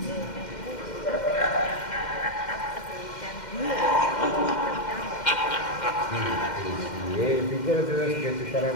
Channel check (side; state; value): right; late; 2.1 ms